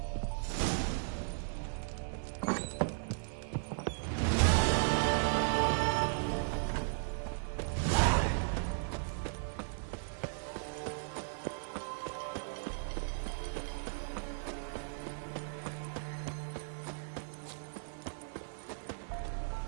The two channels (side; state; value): left; silent; 54 dB below the other